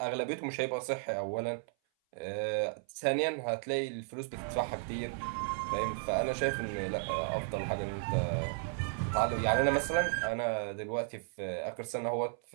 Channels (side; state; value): left; silent; 55 dB below the other